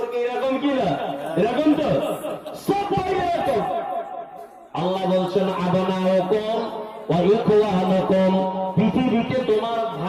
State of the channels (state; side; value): identical; both; correlation 1.00